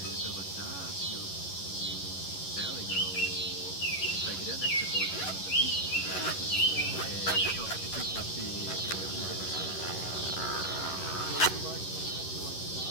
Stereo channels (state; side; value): late; right; 11 ms